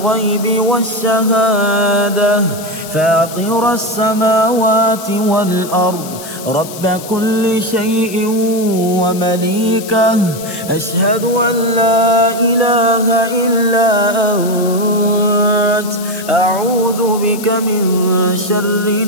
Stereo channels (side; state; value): left; noise; hiss, 14 dB below the sound